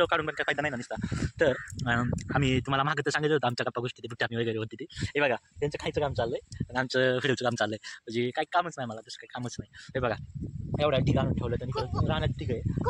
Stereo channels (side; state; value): both; identical; correlation 1.00